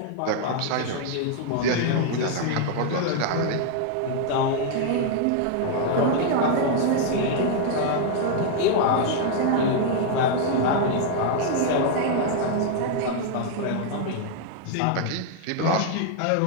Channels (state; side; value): different; both; correlation 0.00